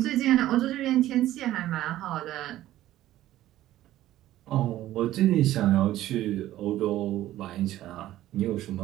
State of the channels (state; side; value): quieter; left; 14.2 dB